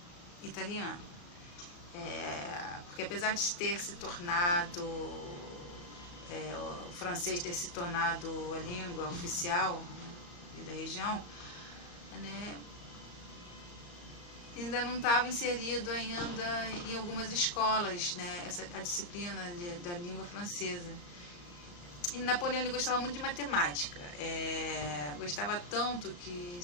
italiano. Porque apesar de ter se tornado, o francês ter se tornado a língua oficial, né, da região, né, ainda não estava inserido ainda em algumas escolas, né, a disciplina da língua francesa. E Napoleão ele gostava muito de matemática, gostava tanto que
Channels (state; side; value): late; right; 34 ms